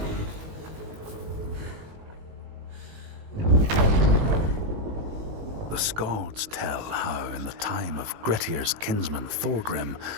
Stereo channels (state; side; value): late; left; 19 ms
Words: The Skalds tell how, in the time of Grettir's kinsman Thorgrim,